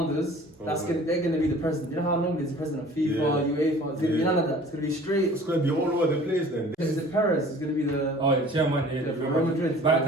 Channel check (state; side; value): normal; both; correlation 0.48